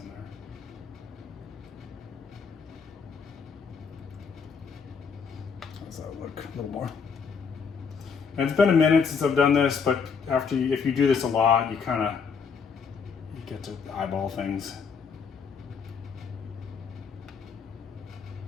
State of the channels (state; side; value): quieter; right; 5.9 dB